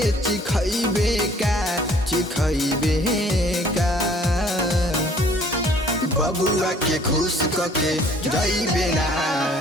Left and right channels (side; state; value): both; normal; correlation 0.56